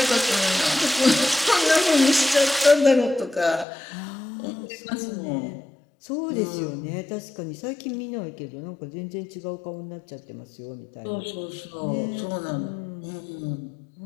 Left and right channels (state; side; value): drops out; right; at 3.7 s